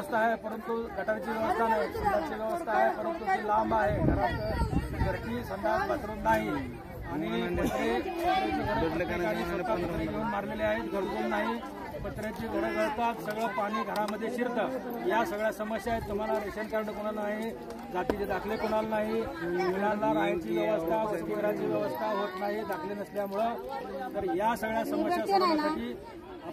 आहे, परंतु गटारची व्यवस्था नाही. संडासची व्यवस्था आहे, परंतु ती लांब आहे. घरात घरची संडास बाथरूम नाही. आणि पत्रे घेऊन मारलेले आहेत, घरकुल नाही. पत्र्याची घरं गळतात, सगळं पाणी घरामध्ये शिरतं. या सगळ्या समस्या आहेत. तुम्हाला रेशन कार्ड कोणाला नाही, जातीचे दाखले कोणाला नाही, मुलांना राहायची व्यवस्था, वसतिगृहाची व्यवस्था होत नाही दाखले नसल्यामुळं. तर या सगळ्या समस्या सोडवण्यासाठी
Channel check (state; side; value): identical; both; correlation 1.00